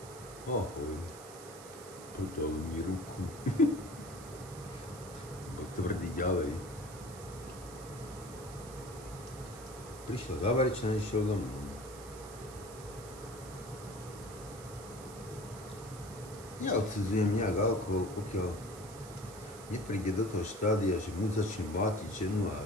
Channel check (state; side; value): noise; right; hiss, 16 dB below the sound